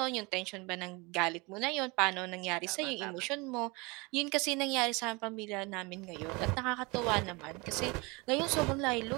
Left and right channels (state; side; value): quieter; left; 26.6 dB